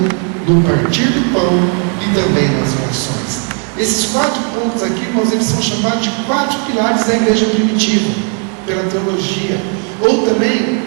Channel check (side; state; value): left; quieter; 38.0 dB